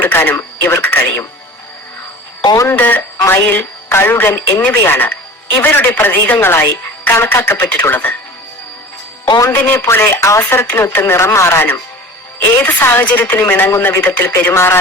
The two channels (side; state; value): both; normal; correlation 0.38